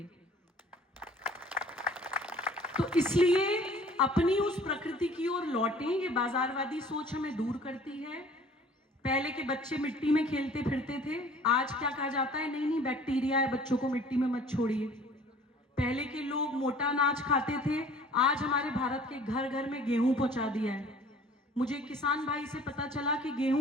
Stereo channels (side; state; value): both; normal; correlation 0.51